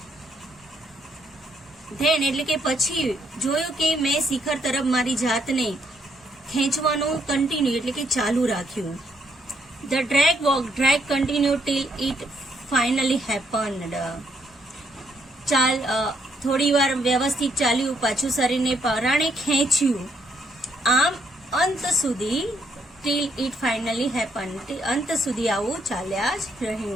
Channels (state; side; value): normal; both; correlation 0.74